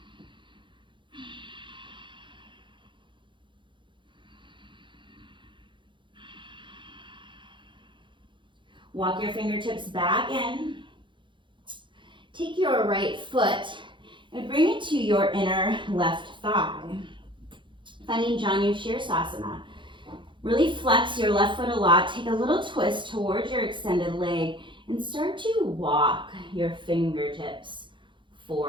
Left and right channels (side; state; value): left; late; 0.23 ms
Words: Walk your fingertips back in. Take your right foot and bring it to your inner left thigh. Finding Janu Shirsasana. Really flex your left foot a lot. Take a little twist towards your extended leg and start to walk your fingertips